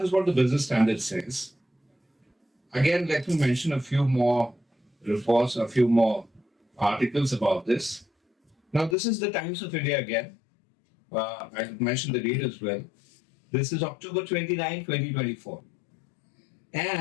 is what the Business Standard says. Again, let me mention a few more reports, a few more articles about this. Now, this is the Times of India again. I mentioned the date as well. This is October 29, 2024.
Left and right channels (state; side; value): drops out; right; at 9.0 s